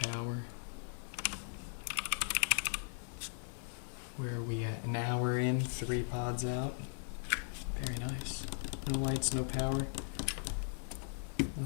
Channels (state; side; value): silent; right; digital silence